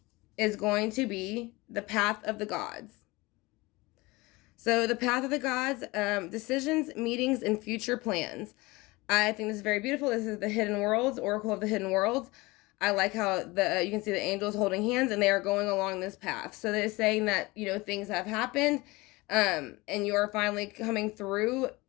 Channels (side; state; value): right; quieter; 22.6 dB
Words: is going to be the Path of the Gods. So the Path of the Gods, decisions, meetings, and future plans. I think this is very beautiful. This is the Hidden Worlds, Oracle of the Hidden Worlds. I like how you can see the angels holding hands and they are going along this path. So they're saying that, things have happened and you are finally coming through